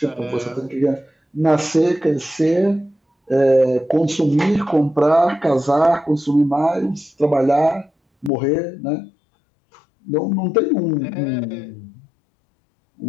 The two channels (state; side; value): drops out; right; at 8.3 s